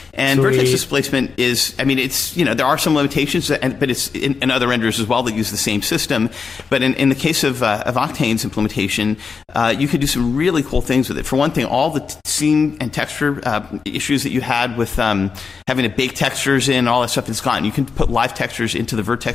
And Sweet. Vertex displacement is, it's, there are some limitations, but it's in other renderers as well that use the same system. But in the case of Octane's implementation, you could do some really cool things with it. For one thing, all the scene and texture issues that you had with having to bake textures in, all that stuff is gone. You can put live textures into the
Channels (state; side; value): quieter; right; 5.3 dB